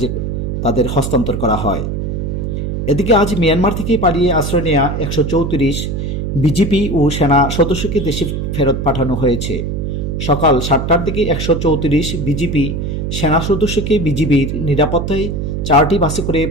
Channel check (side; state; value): right; noise; hum, 3 dB below the sound